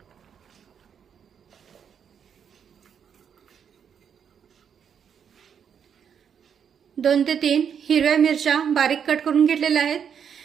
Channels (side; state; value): left; quieter; 7.7 dB